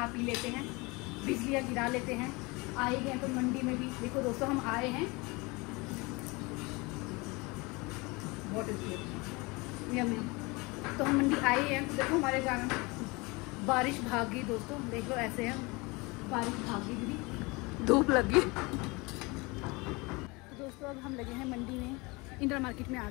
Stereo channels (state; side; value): quieter; right; 25.7 dB